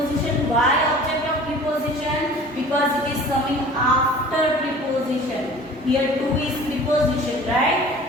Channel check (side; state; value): both; normal; correlation 0.44